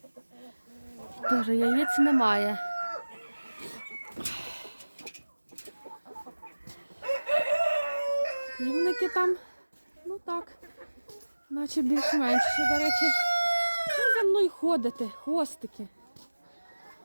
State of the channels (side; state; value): both; inverted; correlation -1.00